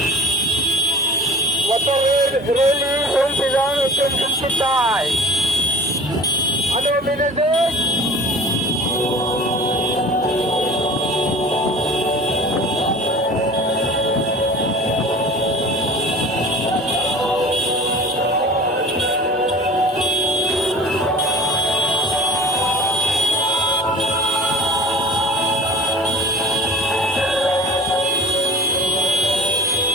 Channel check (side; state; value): both; normal; correlation 0.42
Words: motor rally Sembilan Assumption Kitai ada manager